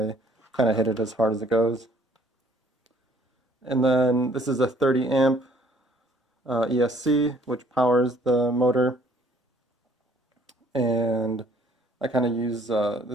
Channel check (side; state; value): both; normal; correlation 0.60